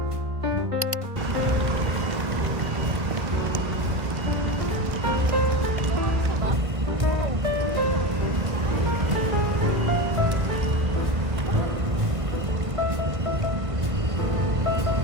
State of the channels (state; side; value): late; left; 1.5 ms